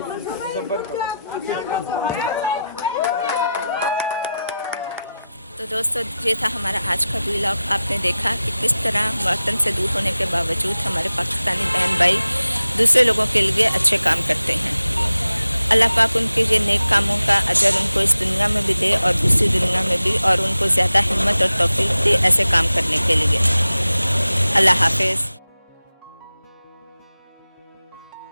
तो दोस्तों ये था हमारा आज का vlog. आपने देखा कि किस तरह वतन से दूर होने के बावजूद हमारे पाकिस्तानी बहन भाई दूसरे लोगों के लिए अच्छे काम करते हैं। अल्लाह पाक उनके ये नेक कामों का अजर उनको इस दुनिया में भी दे और दूसरी दुनिया में भी, और उनको ज़्यादा हिम्मत और तौफीक दे ऐसे काम करने के लिए। अल्लाह हाफिज़।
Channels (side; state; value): both; inverted; correlation -0.92